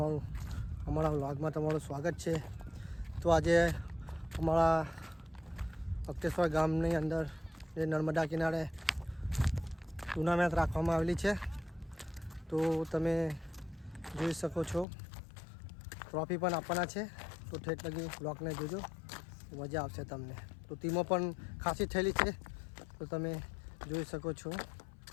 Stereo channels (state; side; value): drops out; right; at 14.9 s